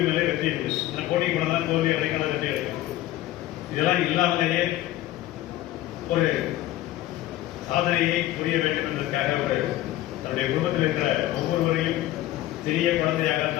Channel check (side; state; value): right; quieter; 14.9 dB